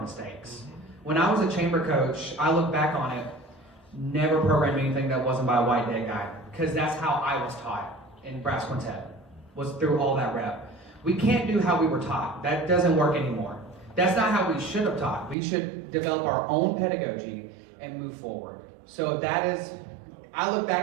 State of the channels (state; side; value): drops out; left; at 15.4 s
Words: mistakes. When I was a chamber coach, I look back on it, never programmed anything that wasn't by a white dead guy, because that's how I was taught in brass quintet, was through all that rep. We can't do how we were taught. That doesn't work anymore. That's not how we should have taught. We should develop our own pedagogy and move forward. So that is, I look